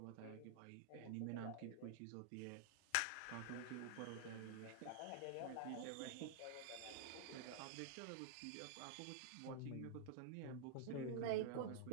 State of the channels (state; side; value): different; both; correlation -0.01